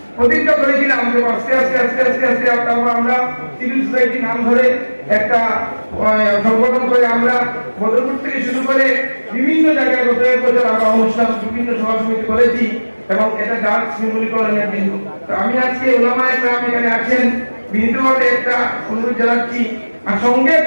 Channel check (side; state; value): both; inverted; correlation -1.00